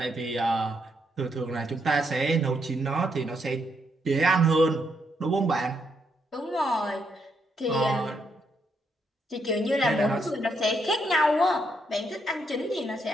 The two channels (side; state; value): both; normal; correlation 0.77